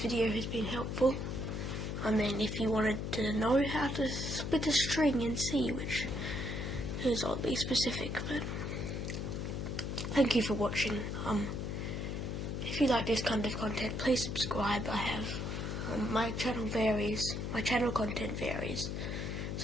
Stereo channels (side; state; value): left; noise; hum, 3 dB below the sound